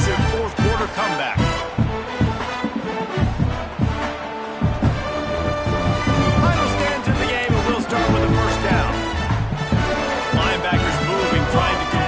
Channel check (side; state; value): both; identical; correlation 1.00